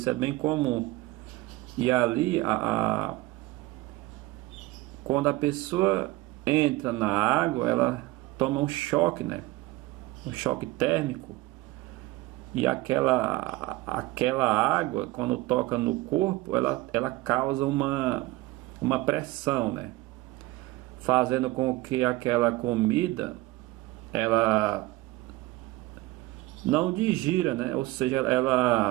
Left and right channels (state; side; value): quieter; left; 19.3 dB